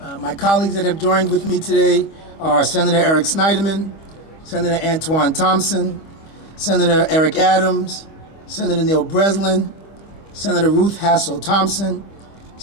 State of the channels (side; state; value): right; late; 25 ms